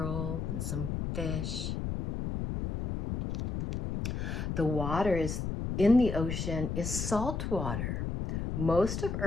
and some fish. The water is in the ocean is salt water. Most of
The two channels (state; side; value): noise; left; rumble, 3 dB below the sound